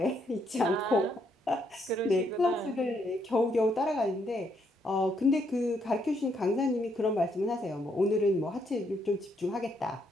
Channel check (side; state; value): both; normal; correlation 0.74